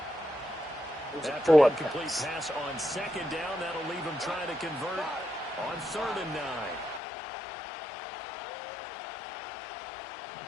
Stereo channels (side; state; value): right; drops out; at 7.0 s